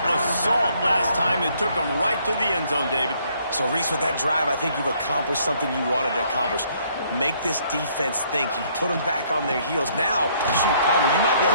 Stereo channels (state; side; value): inverted; both; correlation -0.66